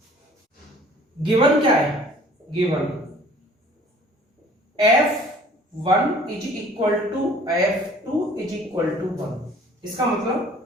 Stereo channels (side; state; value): both; normal; correlation 0.52